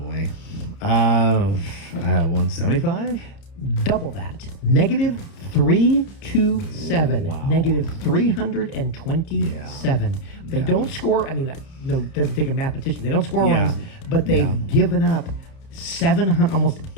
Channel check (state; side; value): late; right; 30 ms